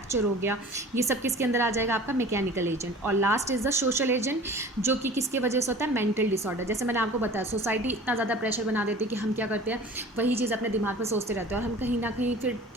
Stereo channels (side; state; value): both; normal; correlation 0.43